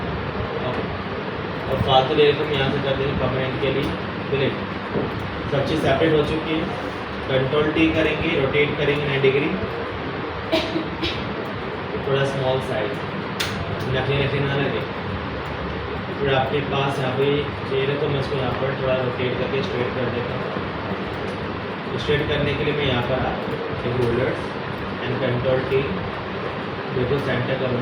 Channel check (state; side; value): identical; both; correlation 1.00